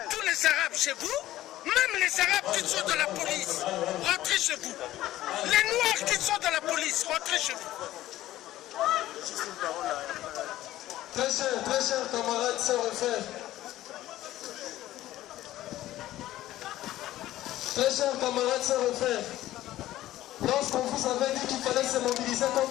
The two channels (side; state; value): right; quieter; 14.8 dB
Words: tous les Arabes chez vous, même les Arabes qui sont dans la police, rentrez chez vous. Les Noirs qui sont dans la police, rentrez chez vous. Très chers camarades, sœurs et frères. Très chers camarades, sœurs et frères. Lorsqu'on vous avait dit qu'il fallait se mobiliser